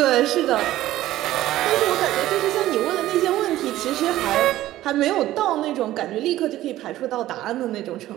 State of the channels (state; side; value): quieter; left; 14.7 dB